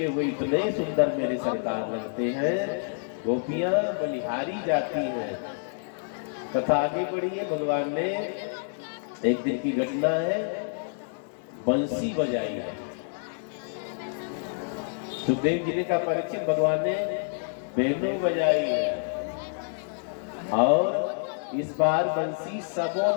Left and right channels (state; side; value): silent; right; 59 dB below the other